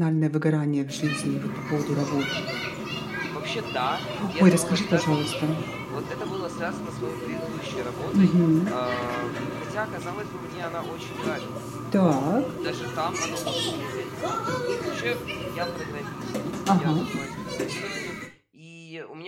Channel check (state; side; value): identical; both; correlation 1.00